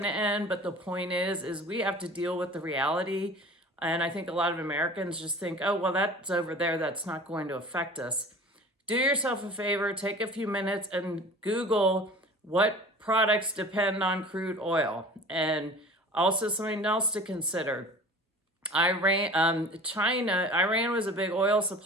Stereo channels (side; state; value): both; normal; correlation 0.42